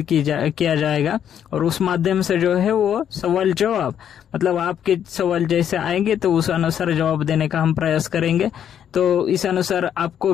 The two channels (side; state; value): right; quieter; 9.3 dB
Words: किया जाएगा और उस माध्यम से जो है वो सवाल जवाब मतलब आपके सवाल जैसे आएंगे तो उस अनुसार जवाब देने का हम प्रयास करेंगे। तो इस अनुसार आपको